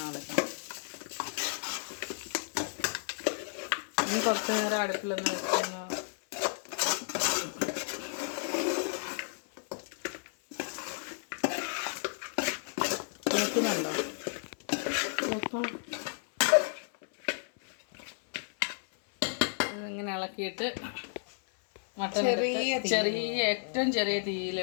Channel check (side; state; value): right; silent; 56 dB below the other